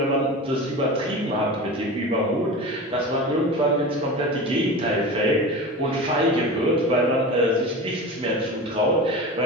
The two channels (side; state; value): both; normal; correlation 0.30